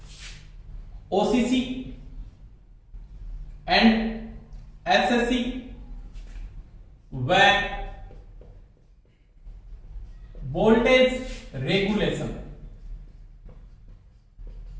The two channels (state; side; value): identical; both; correlation 1.00